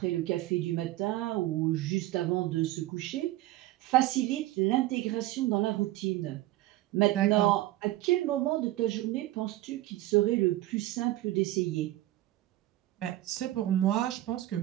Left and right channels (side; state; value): left; quieter; 16.1 dB